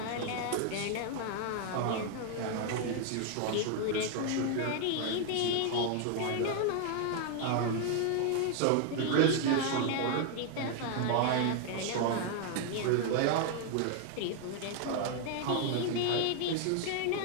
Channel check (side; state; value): both; different; correlation 0.00